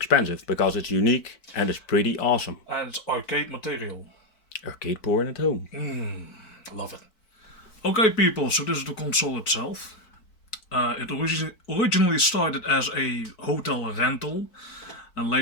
because it's unique and it's pretty awesome. And it's arcade material. Arcade porn at home. Love it. Okay people, so this is the console itself. It originally started as a hotel rental, and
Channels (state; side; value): late; right; 4.6 ms